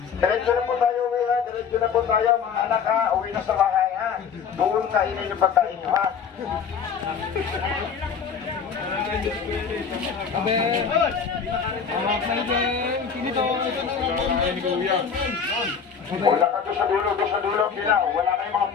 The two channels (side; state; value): right; quieter; 6.6 dB